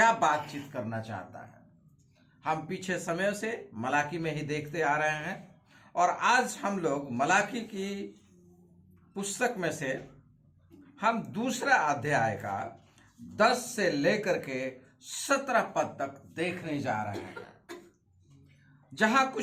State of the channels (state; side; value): identical; both; correlation 1.00